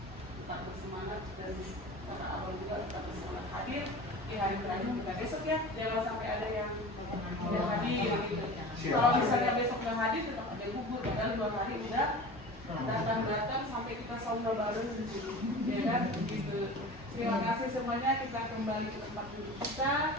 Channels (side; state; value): both; normal; correlation 0.36